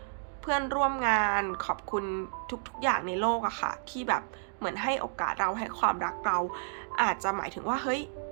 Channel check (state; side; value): silent; left; digital silence